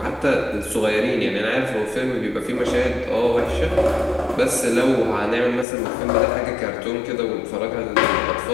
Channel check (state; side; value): drops out; right; at 5.7 s